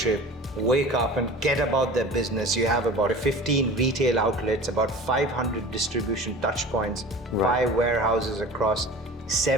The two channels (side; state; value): both; normal; correlation 0.38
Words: wake up and get about their business. You have about 15 retail outlets, about 500 distribution touch points, 5 warehouses across